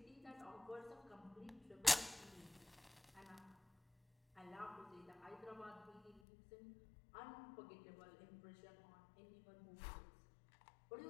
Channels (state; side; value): drops out; right; at 6.2 s